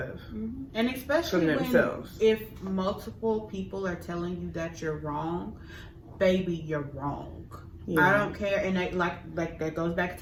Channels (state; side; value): identical; both; correlation 1.00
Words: And especially from when themselves. if multiple people are telling you that you're wrong, baby, you're wrong. Yeah, I don't care. And like that goes back